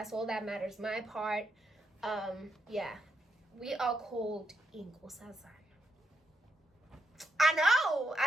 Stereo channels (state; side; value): normal; both; correlation 0.81